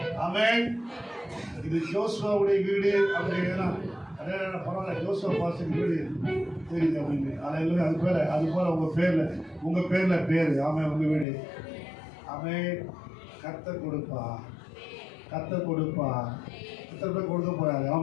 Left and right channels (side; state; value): right; drops out; at 11.2 s